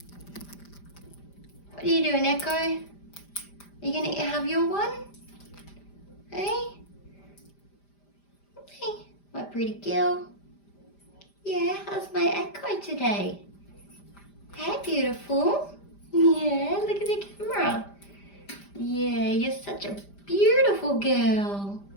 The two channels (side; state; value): right; late; 5.0 ms